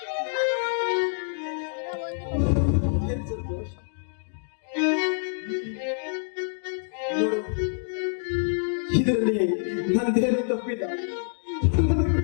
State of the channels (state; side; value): silent; right; digital silence